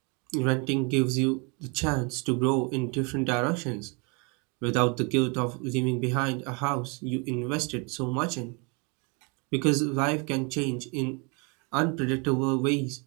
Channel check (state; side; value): quieter; left; 32.6 dB